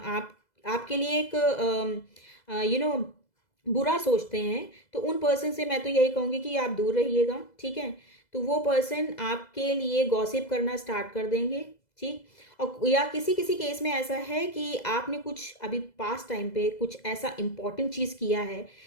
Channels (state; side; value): late; right; 2.0 ms